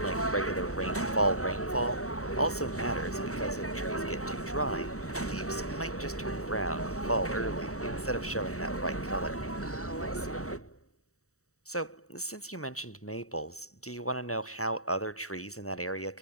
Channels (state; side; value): late; right; 0.65 ms